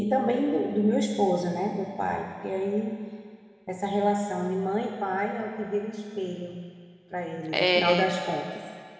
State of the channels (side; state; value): both; identical; correlation 1.00